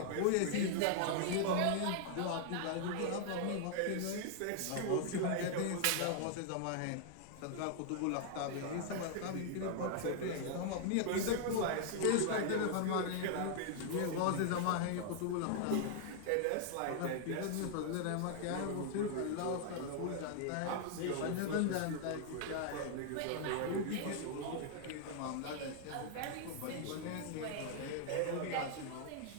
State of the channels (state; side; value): different; both; correlation 0.00